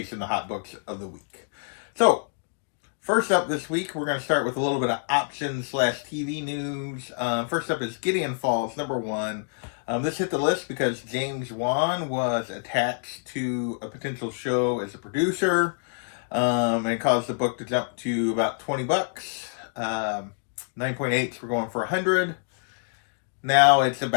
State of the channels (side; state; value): right; silent; digital silence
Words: the hot books of the week. So, first up this week, we're going to start with a little bit of option/TV news. First up is Gideon Falls, number 1. This hit the list because James Wan was attached to a potential show as a producer, and it caused the book to jump to about $20. 9.8s were going for $100. Now it's